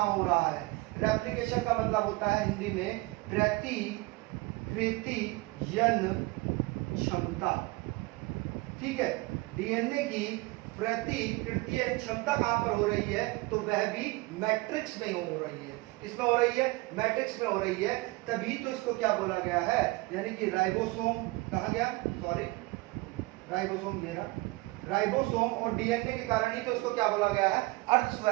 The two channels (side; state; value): left; quieter; 22.8 dB